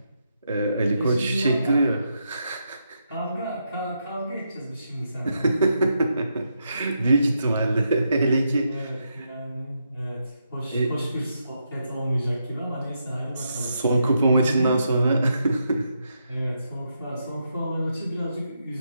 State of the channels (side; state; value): both; inverted; correlation -0.82